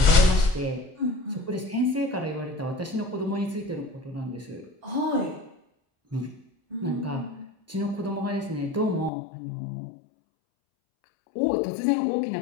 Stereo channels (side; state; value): right; drops out; at 9.1 s